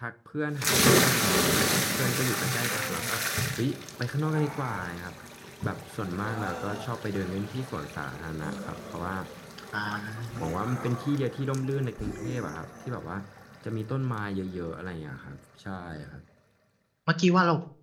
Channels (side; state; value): both; identical; correlation 1.00